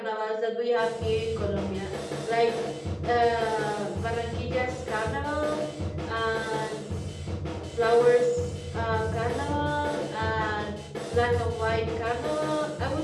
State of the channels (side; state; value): both; identical; correlation 1.00